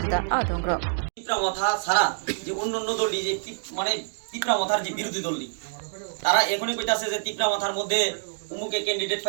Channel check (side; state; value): left; silent; digital silence